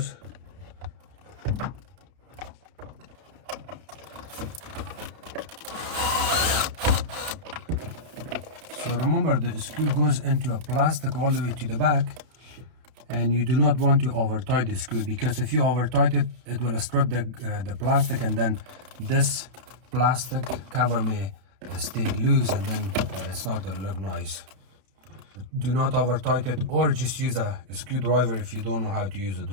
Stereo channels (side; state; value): left; late; 32 ms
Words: So remember, the screw goes into a plastic all the way to the back, and you do not want to over tight the screw, because if you over tight it, it will strip the plastic, and then this plastic cover may stay loose, and then it's not going to look nice. Do not over tight it, or just use a screwdriver if you don't know how to use a